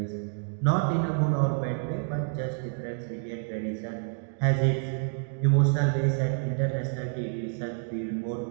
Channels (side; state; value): left; silent; 59 dB below the other